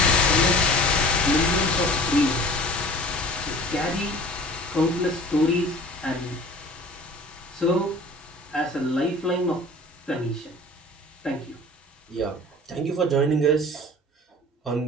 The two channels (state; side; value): normal; both; correlation 0.43